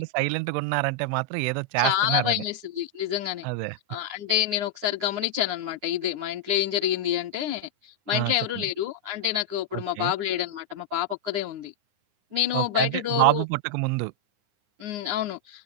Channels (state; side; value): late; left; 9.7 ms